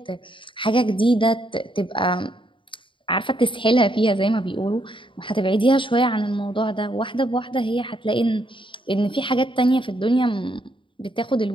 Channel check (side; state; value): right; late; 0.24 ms